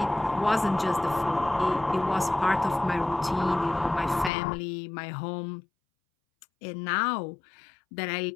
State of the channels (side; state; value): right; drops out; at 4.3 s